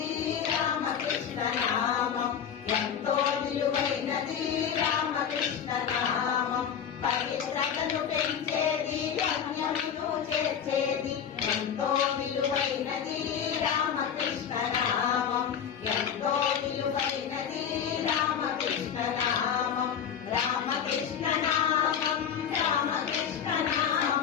రామకృష్ణ నామం ఎంతో విలువైనది రామకృష్ణ నామం పవిత్రతను పెంచేది పుణ్యమును చేర్చేది ఎంతో విలువైనది రామకృష్ణ నామం ఎంతో విలువైనది రామకృష్ణ నామం రామకృష్ణ నామం రామకృష్ణ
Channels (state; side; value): quieter; right; 8.1 dB